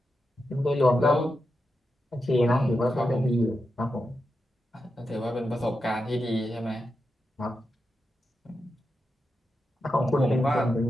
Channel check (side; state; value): both; normal; correlation 0.88